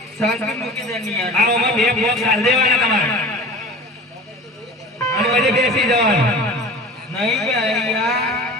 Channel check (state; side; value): normal; both; correlation 0.37